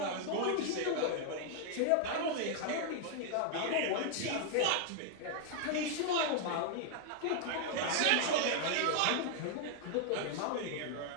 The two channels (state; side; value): different; both; correlation 0.00